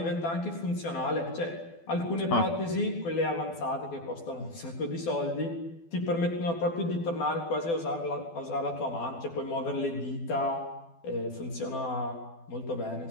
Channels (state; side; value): late; right; 12 ms